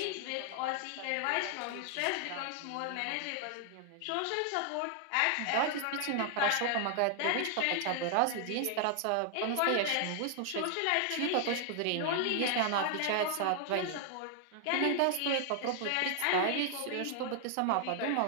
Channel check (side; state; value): both; different; correlation 0.00